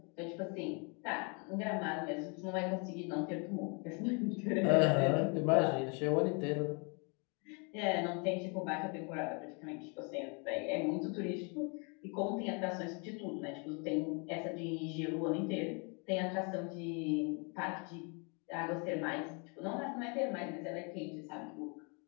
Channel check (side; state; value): right; quieter; 34.5 dB